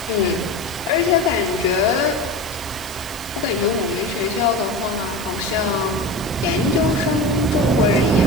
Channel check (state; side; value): noise; right; hiss, 14 dB below the sound